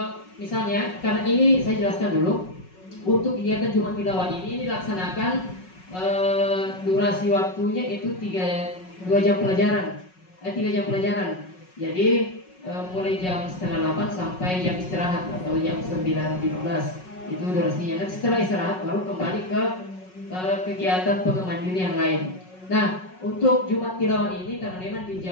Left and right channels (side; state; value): right; late; 5.4 ms